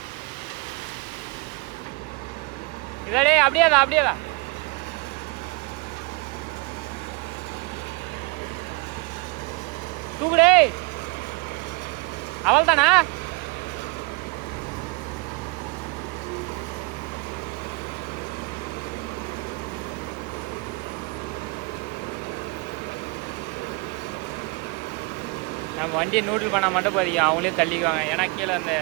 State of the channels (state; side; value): quieter; left; 26.8 dB